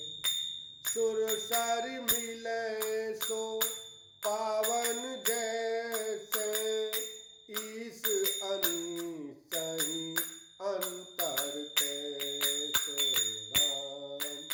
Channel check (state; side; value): identical; both; correlation 1.00